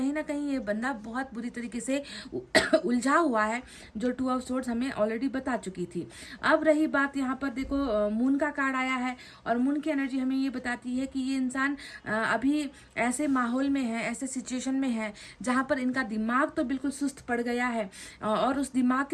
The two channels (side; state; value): both; identical; correlation 1.00